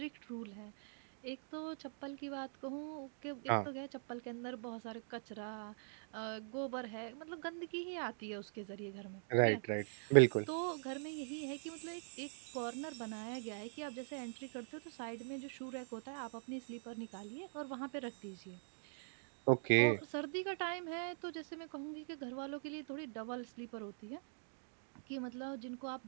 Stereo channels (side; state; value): left; silent; digital silence